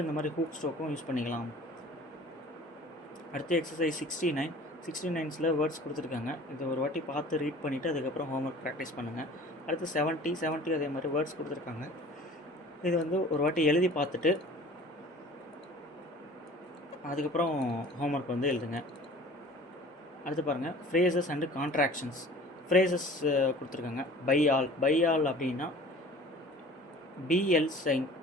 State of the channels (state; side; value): normal; both; correlation 0.46